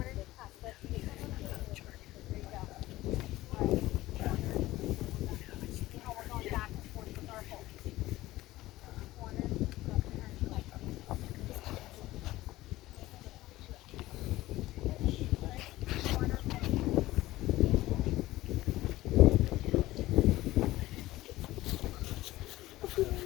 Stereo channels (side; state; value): right; quieter; 17.1 dB